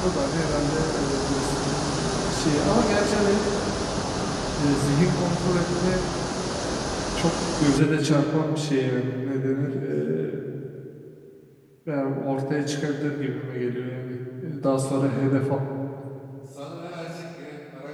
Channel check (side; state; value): both; identical; correlation 1.00